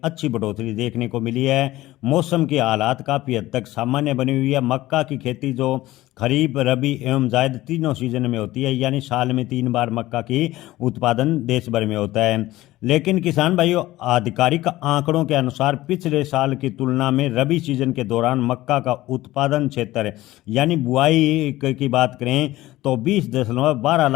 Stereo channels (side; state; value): right; quieter; 16.8 dB